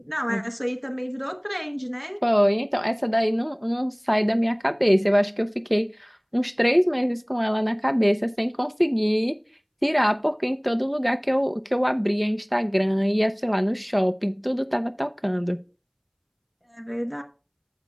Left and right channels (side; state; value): both; identical; correlation 1.00